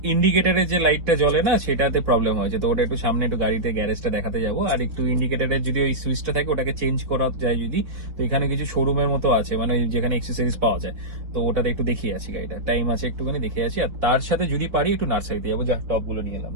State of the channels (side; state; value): left; late; 4.0 ms